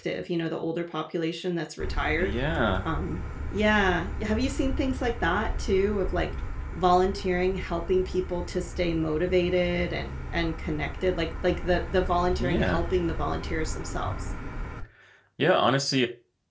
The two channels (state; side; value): identical; both; correlation 1.00